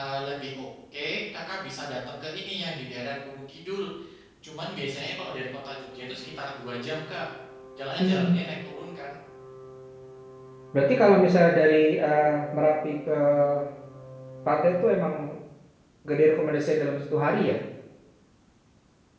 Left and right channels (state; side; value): identical; both; correlation 1.00